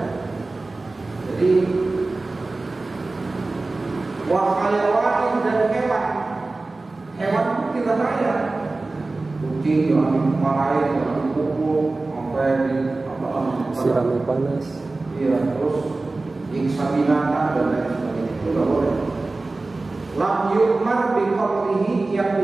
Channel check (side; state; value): left; quieter; 3.3 dB